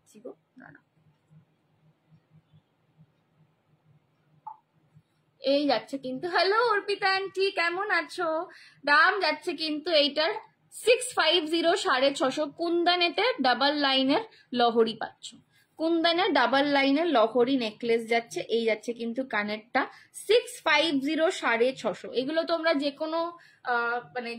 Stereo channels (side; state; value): both; identical; correlation 1.00